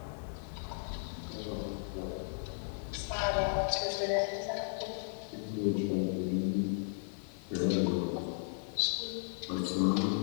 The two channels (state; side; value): silent; right; 54 dB below the other